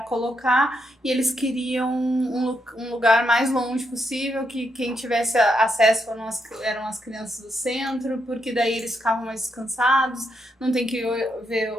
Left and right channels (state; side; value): normal; both; correlation 0.80